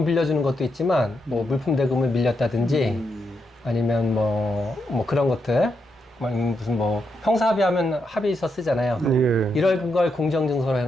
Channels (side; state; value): both; normal; correlation 0.82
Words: 빌려주는 것도 있지만 뭐 물품 대금을 밀렸다든지 아니면 뭐 그런 것들 무슨 뭐 형사합의하면 합의서 쓰잖아요. 예. 이런 걸 공정증서로